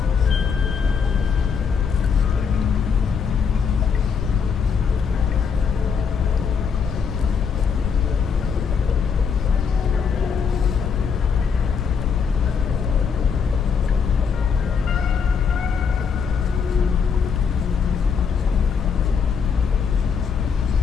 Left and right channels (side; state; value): right; quieter; 6.3 dB